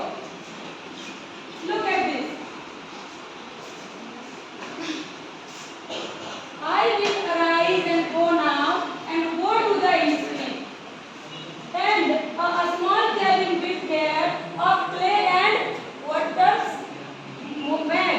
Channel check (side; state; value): both; identical; correlation 1.00